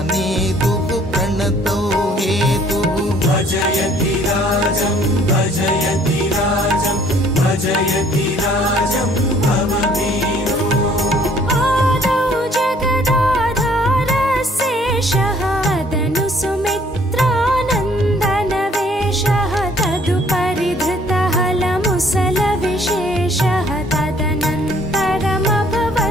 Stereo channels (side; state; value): both; normal; correlation 0.59